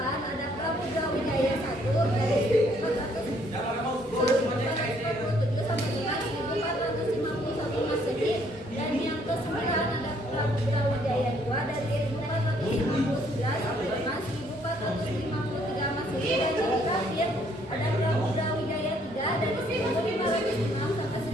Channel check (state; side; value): normal; both; correlation 0.66